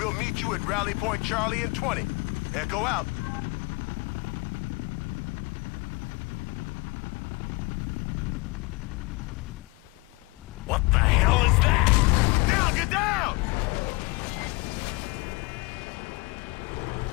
meet you at Rally Point Charlie in 20. Echo out. What the hell is that? Down, get down!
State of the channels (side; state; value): right; quieter; 25.9 dB